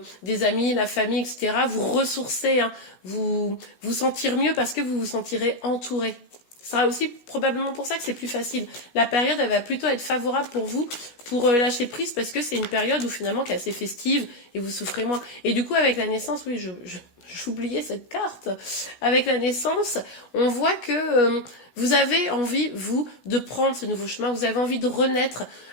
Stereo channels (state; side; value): late; right; 16 ms